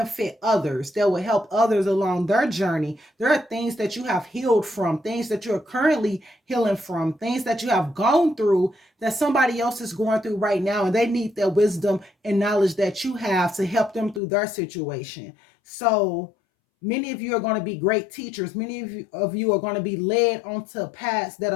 others, that will help others along their journey. There are things that you have healed from, things that you're currently healing from, things that you have gone through that somebody else is going through right now, and they need that wisdom and knowledge that you have to help them through their situation. So many of you are going to be great teachers. Many of you are going to be led onto paths that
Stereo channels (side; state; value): right; drops out; at 14.2 s